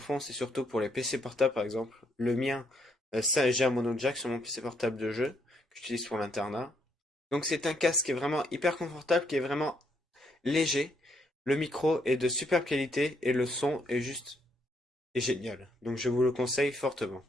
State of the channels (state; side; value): normal; both; correlation 0.73